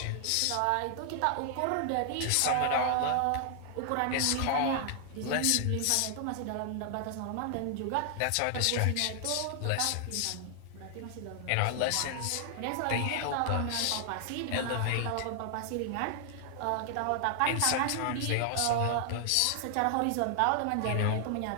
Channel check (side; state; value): both; different; correlation 0.00